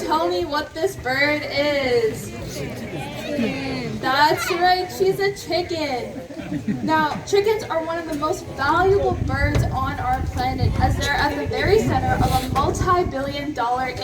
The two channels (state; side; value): identical; both; correlation 1.00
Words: me what this bird is? That's right, she's a chicken. Now, chickens are one of the most valuable birds on our planet as they're at the very center of a multi-billion-dollar